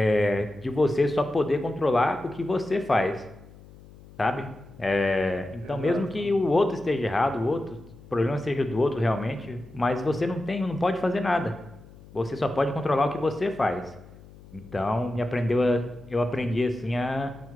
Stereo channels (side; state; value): left; noise; hum, 21 dB below the sound